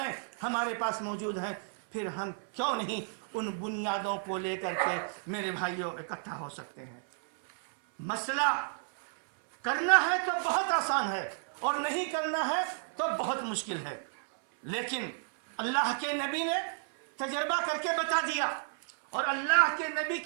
ہمارے پاس موجود ہیں، پھر ہم کیوں نہیں ان بنیادوں کو لے کر کے میرے بھائیوں اکٹھا ہو سکتے ہیں؟ مسئلہ کرنا ہے تو بہت آسان ہے، اور نہیں کرنا ہے تو بہت مشکل ہے، لیکن اللہ کے نبی نے تجربہ کر کے بتا دیا، اور اللہ کے نبی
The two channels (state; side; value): silent; left; 56 dB below the other